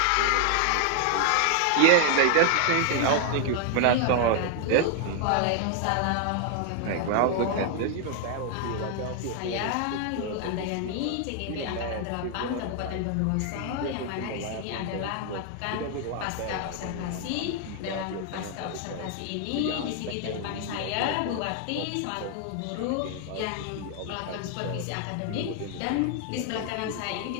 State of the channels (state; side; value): different; both; correlation 0.00